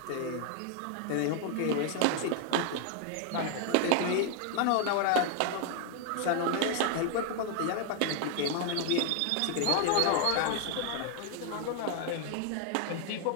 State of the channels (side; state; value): both; different; correlation 0.00